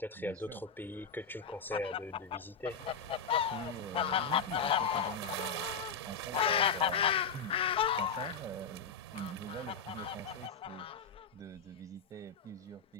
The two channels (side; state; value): right; quieter; 5.6 dB